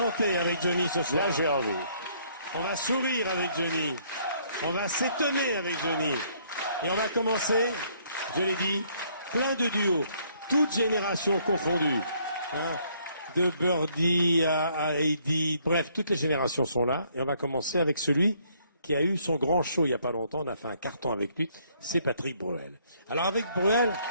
avec Johnny ce soir. Là, j'ai envie. On va sourire avec Johnny. On va s'étonner avec Johnny. Et on va commencer, je l'ai dit, plein de duos, toutes générations confondues. Hein, de Birdie à Heidi, bref, toutes les générations sont là. Et on va commencer avec celui qui a eu son grand show il n'y a pas longtemps. On a fait un carton avec lui. C'est Patrick Bruel. Alors avec Bruel,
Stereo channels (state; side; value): inverted; both; correlation -0.66